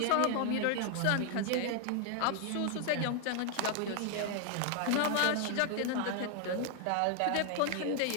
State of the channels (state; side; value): different; both; correlation 0.00